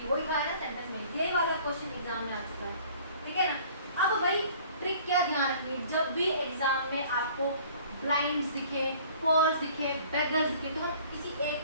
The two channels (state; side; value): inverted; both; correlation -0.51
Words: है। वही कहा है ना सेंटेंस में, ये वाला क्वेश्चन एग्जाम में आ चुका है, ठीक है ना। अब वही ट्रिक क्या ध्यान रखिए, जब भी एग्जाम में आपको ब्लाइंड्स दिखे, पोर्स दिखे, बेगर्स दिखे, तो हम किसी